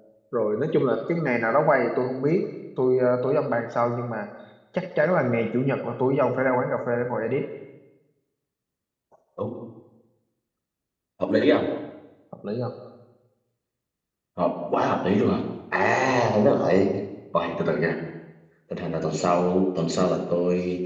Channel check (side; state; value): both; identical; correlation 1.00